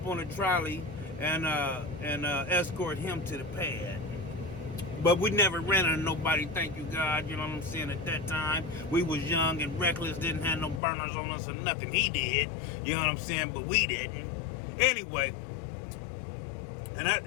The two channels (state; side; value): drops out; right; at 10.8 s